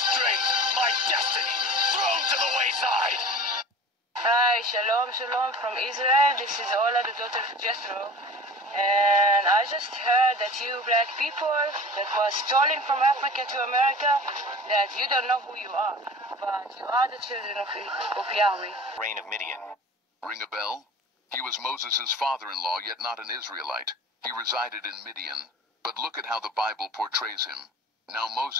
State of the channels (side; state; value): both; normal; correlation 0.40